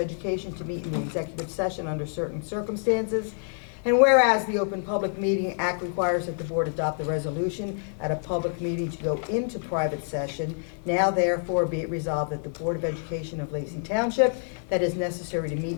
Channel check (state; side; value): silent; right; 60 dB below the other